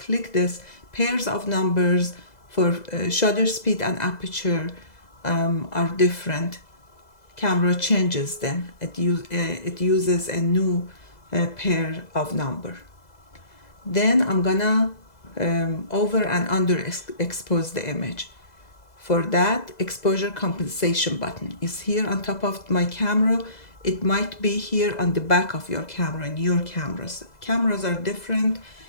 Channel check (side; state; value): right; late; 2.0 ms